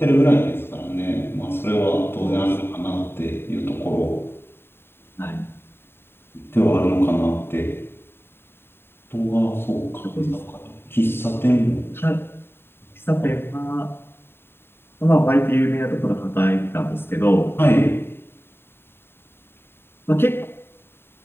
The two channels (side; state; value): right; late; 0.11 ms